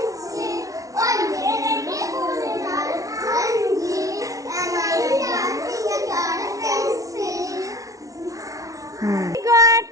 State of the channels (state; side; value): late; left; 0.17 ms